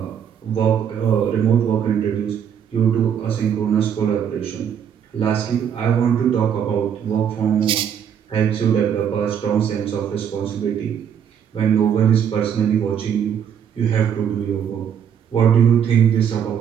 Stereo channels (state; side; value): quieter; left; 8.4 dB